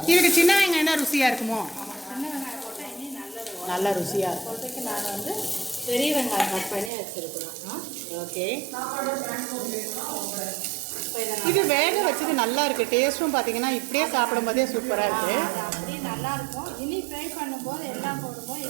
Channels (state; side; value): drops out; left; at 6.9 s